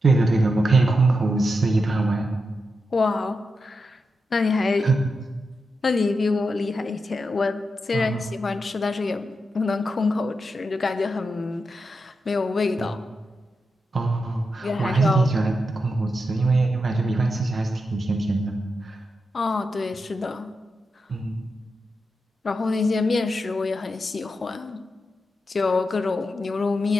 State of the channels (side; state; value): both; normal; correlation 0.87